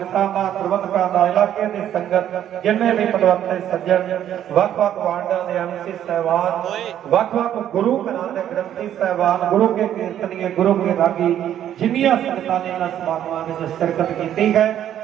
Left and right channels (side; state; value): left; quieter; 10.8 dB